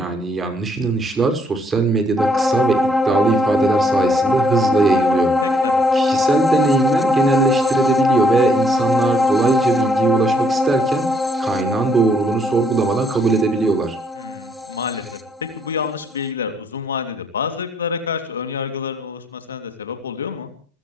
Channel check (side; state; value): both; normal; correlation 0.69